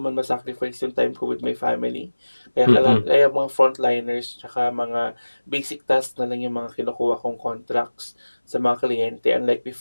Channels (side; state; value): both; inverted; correlation -1.00